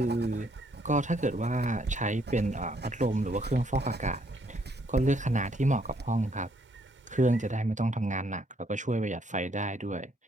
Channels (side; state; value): both; normal; correlation 0.69